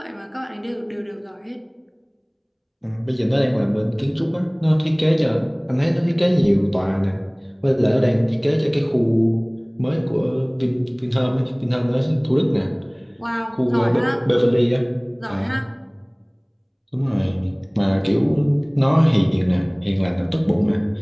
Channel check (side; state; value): both; identical; correlation 1.00